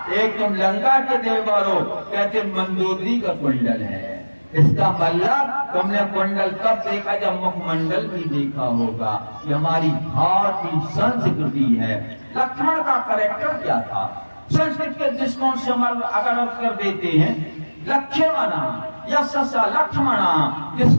एक तुम लंका के देवर हो, कहते मंदोदरी का कुंडल है। इसका मतलब तुमने कुंडल कब देखा? जब मुखमंडल भी देखा होगा। ये हमारी भारतीय संस्कृति है। लक्ष्मण का कैरेक्टर क्या था? संस्कृत के दृष्टिकोण से हम अगर अर्थ कर देते हैं लक्ष्मणा यशसा लक्ष्मणा,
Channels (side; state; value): both; inverted; correlation -1.00